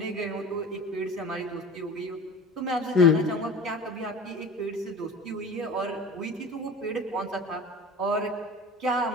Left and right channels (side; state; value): both; normal; correlation 0.37